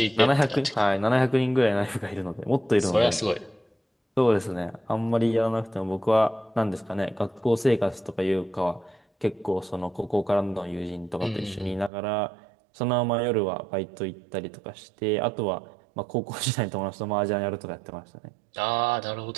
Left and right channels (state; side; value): drops out; left; at 11.9 s